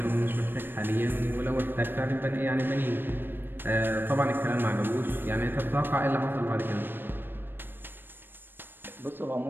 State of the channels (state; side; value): late; left; 0.096 ms